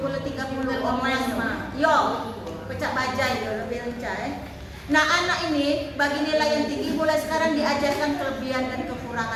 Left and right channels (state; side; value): identical; both; correlation 1.00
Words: orang mah. Yo, pecah bajai dia lebih lincah. Nah anak ini bagi nilai yang tinggi mulai sekarang diajarkan kelebihan dan